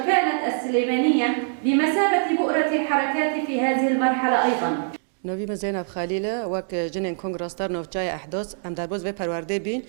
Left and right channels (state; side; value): silent; left; digital silence